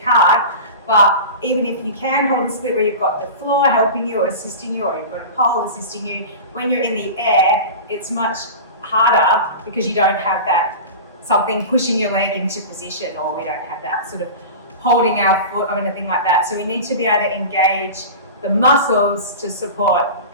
but even if you can hold a split where you've got the floor helping you or assisting you, or you've got a pole assisting you, when you're in the air, it's much harder because you don't have that something pushing your leg into position, or we don't have that sort of holding our foot or anything like that. So we need to be able to engage the muscles to support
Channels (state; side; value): inverted; both; correlation -0.30